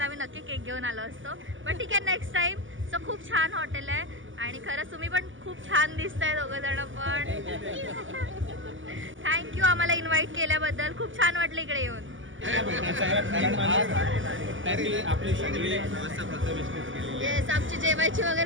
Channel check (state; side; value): late; left; 0.57 ms